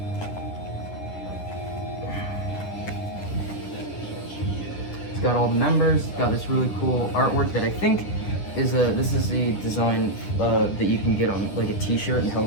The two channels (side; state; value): right; late; 10 ms